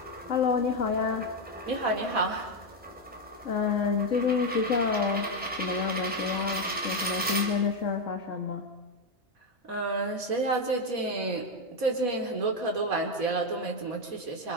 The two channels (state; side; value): normal; both; correlation 0.06